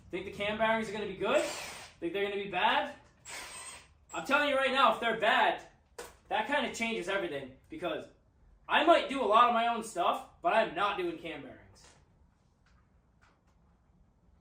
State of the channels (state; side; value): identical; both; correlation 1.00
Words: Think the cam bearings are going to be good? Think they're going to be bad? I'm telling you right now, if they're bad, that kind of changes everything, because I might do a lot of my own stuff, but I'm not doing cam bearings.